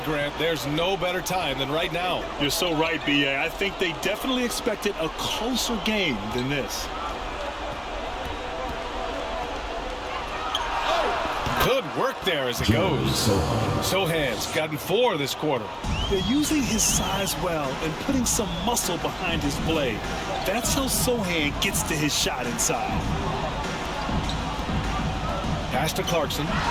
Grant, there's no better time than right now. You're so right, B.A. I think they definitely expected a closer game than this. Good work there as it goes. Sohan's gotten 4 this quarter. They're using his size well and putting some muscle behind his play. That's how Sohan gets to his shot inside. Pass to Clarkson.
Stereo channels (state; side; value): identical; both; correlation 1.00